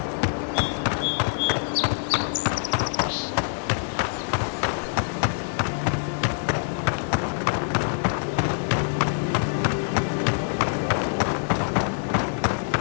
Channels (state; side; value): silent; right; digital silence